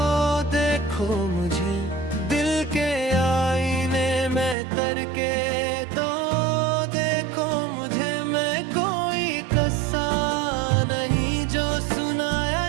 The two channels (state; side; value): drops out; left; at 4.5 s